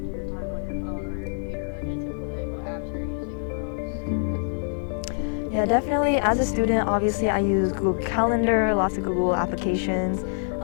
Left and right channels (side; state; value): right; silent; digital silence